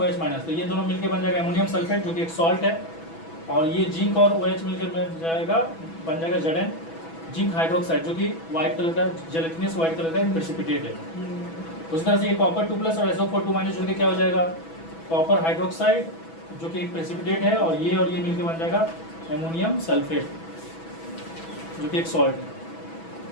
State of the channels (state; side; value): late; right; 6.1 ms